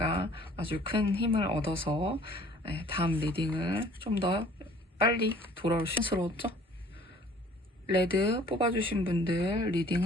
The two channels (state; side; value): normal; both; correlation 0.53